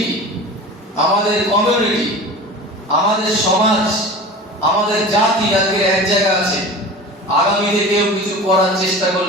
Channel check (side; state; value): both; normal; correlation 0.35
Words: আমাদের কমিউনিটি, আমাদের সমাজ, আমাদের জাতি আজকে এক জায়গা আছে, আগামীতে কেউ কিছু করার চেষ্টা